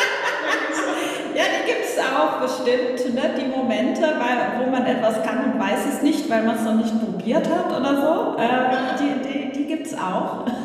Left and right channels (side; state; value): both; identical; correlation 1.00